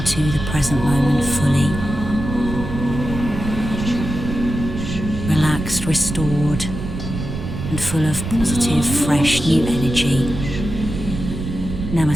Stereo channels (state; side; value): noise; right; rumble, 6 dB below the sound